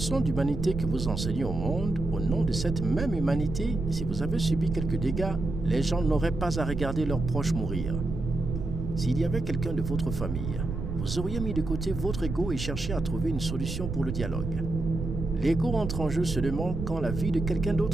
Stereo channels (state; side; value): noise; right; rumble, 5 dB below the sound